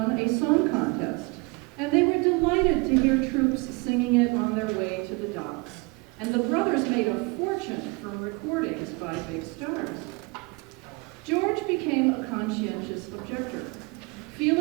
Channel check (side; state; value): left; quieter; 28.0 dB